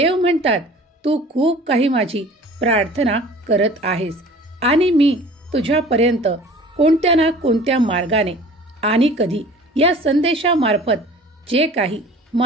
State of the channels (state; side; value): normal; both; correlation 0.45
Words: म्हणतात, तू खूप काही माझी प्रार्थना करत आहेस आणि मी तुझ्यापर्यंत कोणत्या ना कोणत्या मार्गाने आणि कधी या संदेशामार्फत जे काही